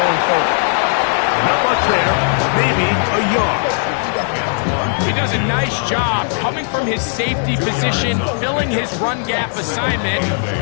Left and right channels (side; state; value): right; silent; 62 dB below the other